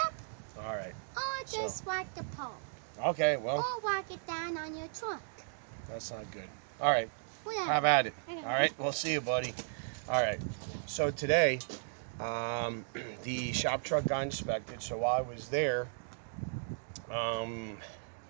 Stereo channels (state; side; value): silent; left; digital silence